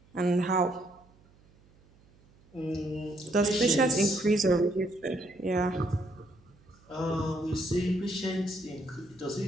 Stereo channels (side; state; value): right; noise; hum, 29 dB below the sound